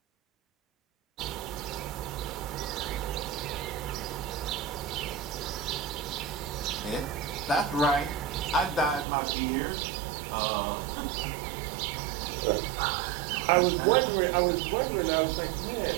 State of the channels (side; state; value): left; drops out; at 9.1 s